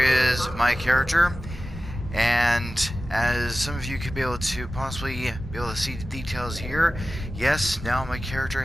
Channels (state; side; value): normal; both; correlation 0.95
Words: my character, and as some of you could be able to possibly be able to see the details here, yes, now my character